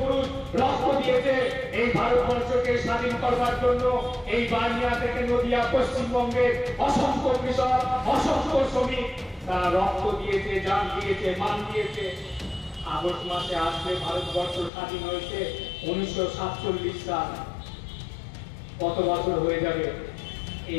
পুরুষ রক্ত দিয়েছে এই ভারতবর্ষকে স্বাধীন করবার জন্য। এই বানিয়া থেকে নদিয়া পশ্চিমবঙ্গের অসংখ্য কৃষক, অসংখ্য শ্রমিক তারা রক্ত দিয়েছে, জান দিয়েছে, মান দিয়েছে। আগস্ট মাসে আসলে ভারতবর্ষ স্বাধীন হয়েছে 1947 সাল। কত বছর হয়ে যাবে?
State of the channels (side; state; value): right; drops out; at 14.7 s